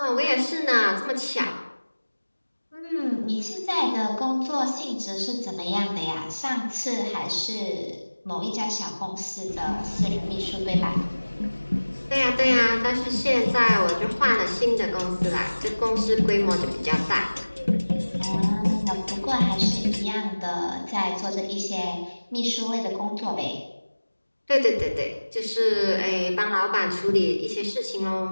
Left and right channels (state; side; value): inverted; both; correlation -1.00